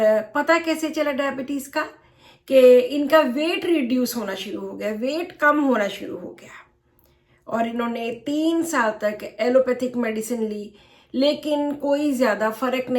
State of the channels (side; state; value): both; identical; correlation 1.00